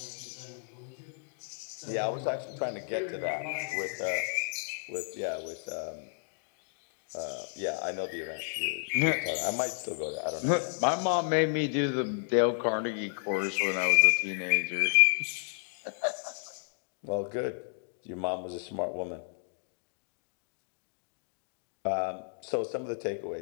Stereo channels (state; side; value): silent; right; digital silence